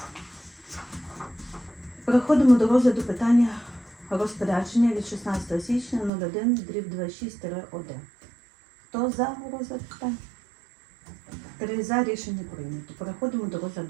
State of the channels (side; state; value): left; drops out; at 6.1 s